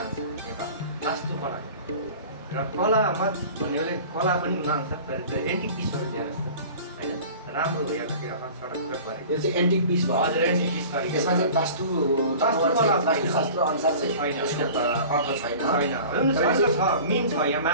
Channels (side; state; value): both; inverted; correlation -0.41